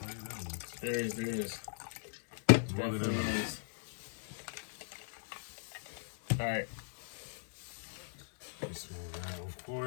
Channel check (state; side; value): silent; right; digital silence